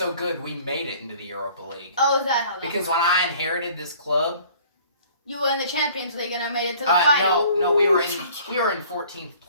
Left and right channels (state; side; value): inverted; both; correlation -0.52